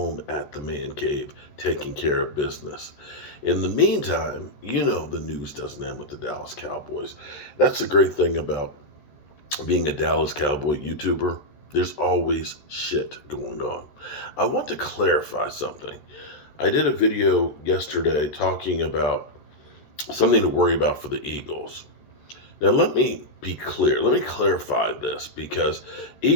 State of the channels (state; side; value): late; right; 14 ms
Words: at the man cave taking care of business. In the meantime, you know the news doesn't end with the Dallas Cowboys. That's the great thing about being a Dallas Cowboy YouTuber. There's always shit going on. I want to clarify something. I did a video yesterday talking about something to worry about for the Eagles. Now, let me be clear. Let me clarify this because